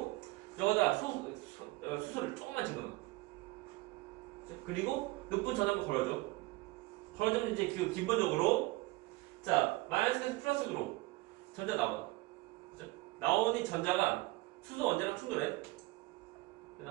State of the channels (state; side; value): quieter; left; 21.1 dB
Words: 여기다 수소를 조금만 집어넣어. 그리고 높은 전압을 걸어주면 이제 그 기본적으로 자 마이너스에서 플러스로 전자 나와. 그죠? 나오니 전자가 수소 원자랑 충돌해.